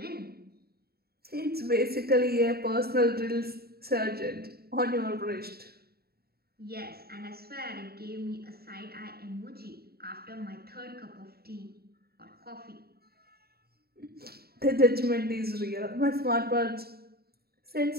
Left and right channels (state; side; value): late; left; 0.45 ms